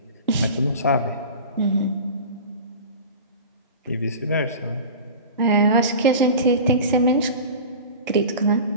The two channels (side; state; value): both; inverted; correlation -0.34